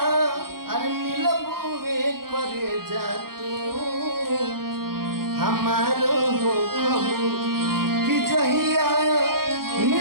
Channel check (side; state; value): left; late; 0.93 ms